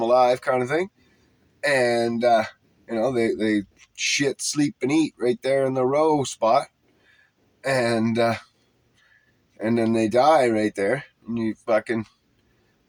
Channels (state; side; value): identical; both; correlation 1.00